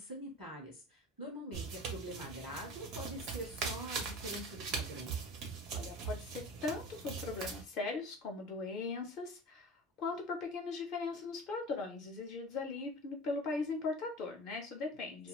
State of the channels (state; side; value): normal; both; correlation 0.36